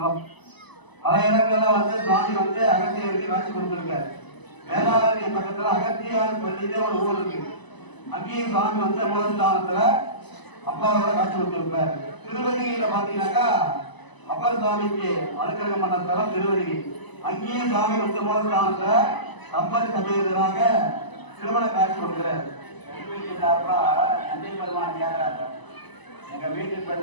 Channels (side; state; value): right; late; 1.0 ms